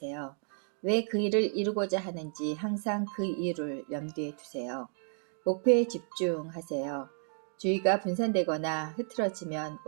왜 그 일을 이루고자 하는지 항상 그 이유를 염두에 두세요. 목표에 집중하세요. 주의가 분산되거나 흐트러지면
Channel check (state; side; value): silent; left; 56 dB below the other